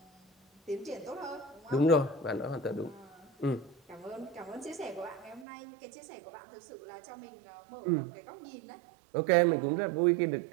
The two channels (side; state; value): left; drops out; at 5.5 s